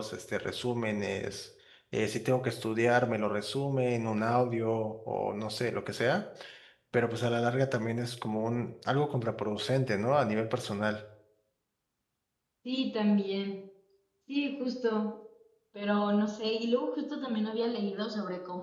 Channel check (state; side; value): identical; both; correlation 1.00